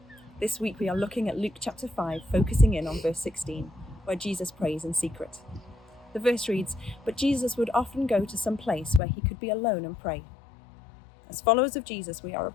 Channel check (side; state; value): right; drops out; at 9.0 s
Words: This week we are looking at Luke chapter 5, focusing in on verse 16, where Jesus prays in secret. The verse reads, "But Jesus would often go to some place where he could be alone and pray." As followers of Jesus, we are